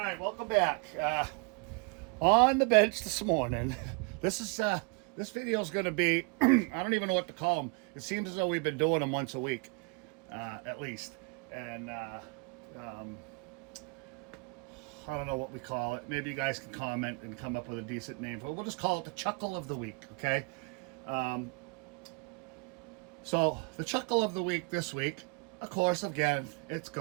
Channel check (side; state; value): left; quieter; 32.4 dB